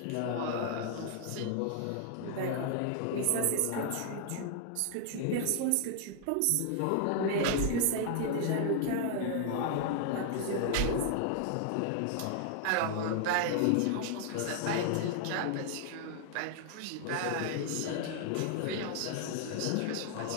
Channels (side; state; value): both; different; correlation 0.00